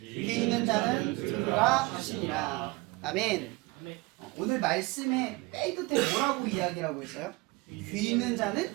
귀 있는 자는 들으라 하시니라. 아멘. 오늘 말씀의 맨 끝에 뭐라고 이야기라고 했어요? 귀 있는 자는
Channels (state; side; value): quieter; left; 23.6 dB